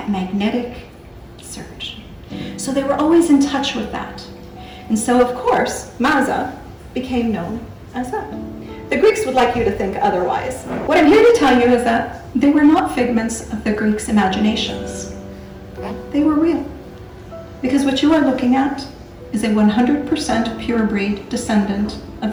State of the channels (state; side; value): identical; both; correlation 1.00